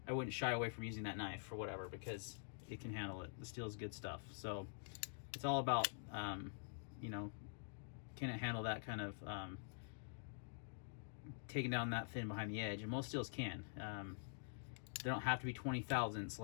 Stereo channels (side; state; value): right; silent; digital silence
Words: shy away from using that knife for whatever, because it can handle it. The steel is good stuff. So it's all about can it handle that kind of taking down that thin behind the edge, and most steels can. They don't have to be 20 thousandths